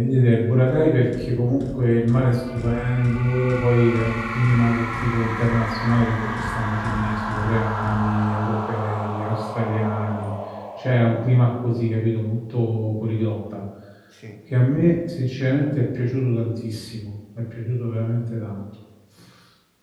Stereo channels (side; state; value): both; identical; correlation 1.00